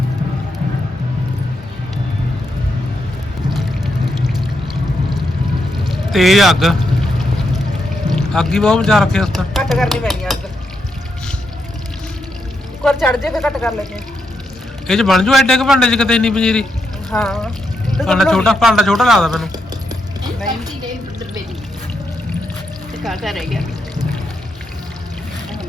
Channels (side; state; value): both; normal; correlation 0.81